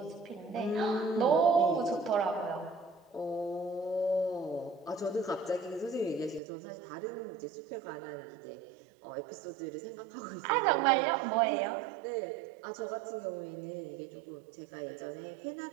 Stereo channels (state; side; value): drops out; left; at 6.4 s